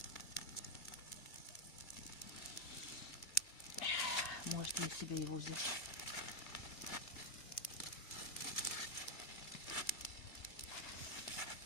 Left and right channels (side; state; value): right; late; 2.3 ms